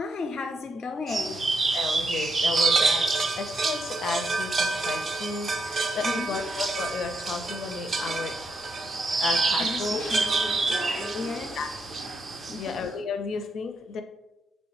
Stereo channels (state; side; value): normal; both; correlation 0.80